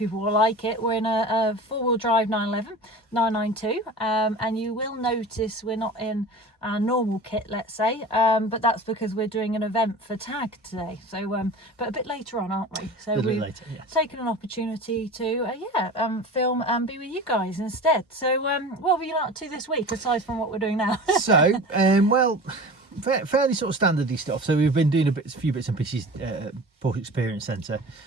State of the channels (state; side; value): normal; both; correlation 0.36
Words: will like it. We're in a four-wheel drive 911, 992, and you will notice we're not in our normal kit, let's say, but that's because we're doing an event for TAG today. So, but a bit later on, aren't we? So we've taken an opportunity to, film and be with you guys instead. So, what have you been up to this week aside from what we're doing now? So, fairly sort of standardy stuff. So we've been doing a few bits and pieces Porsche Experience Centre.